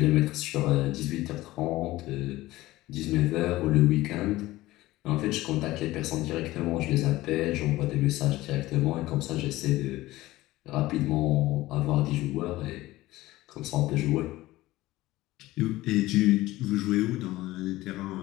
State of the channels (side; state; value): right; quieter; 17.7 dB